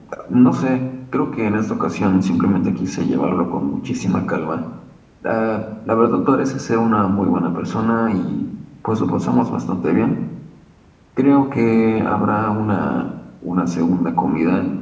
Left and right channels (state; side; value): identical; both; correlation 1.00